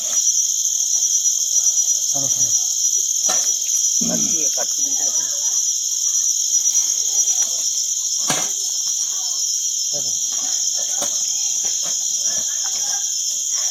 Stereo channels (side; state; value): both; identical; correlation 1.00